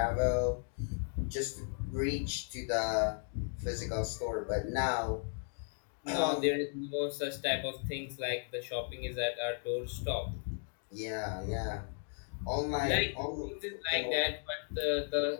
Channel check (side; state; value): right; silent; 54 dB below the other